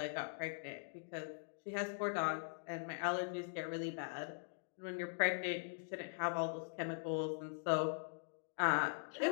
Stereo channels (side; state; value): right; silent; digital silence